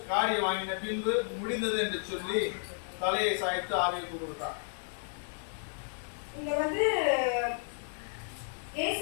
காடியை வாங்கின பின்பு முடிந்தது என்று சொல்லி தலையை சாய்த்து ஆவிக்கு கொடுத்தார். இங்க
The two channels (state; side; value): silent; right; digital silence